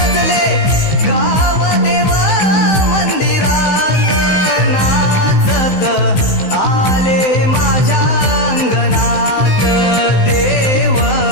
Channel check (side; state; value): right; late; 16 ms